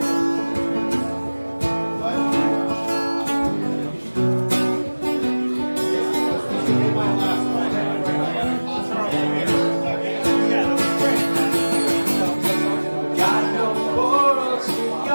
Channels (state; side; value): inverted; both; correlation -1.00